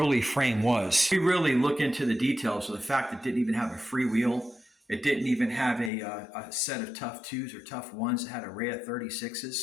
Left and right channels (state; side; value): drops out; right; at 5.9 s